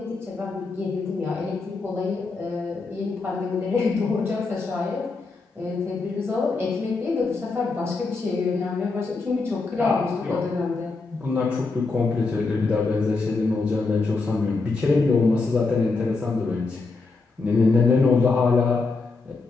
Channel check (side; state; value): right; quieter; 4.0 dB